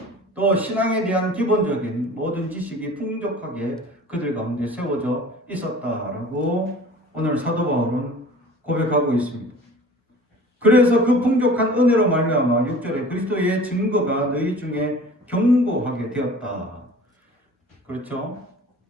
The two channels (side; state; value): both; normal; correlation 0.43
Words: 또 신앙에 대한 기본적인 모든 지식이 풍족하게 그들 가운데 세워져 있었다라고 오늘 사도 바울은 고백하고 있습니다. 그래서 그 풍족한 은혜로 말미암아 6절에 그리스도의 증거가 너희 중에 견고하게 되었다. 그렇죠?